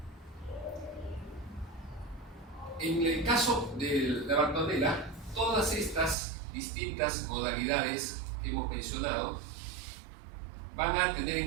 En el caso de la bartonela, todas estas distintas modalidades que hemos mencionado van a tener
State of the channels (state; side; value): drops out; left; at 6.2 s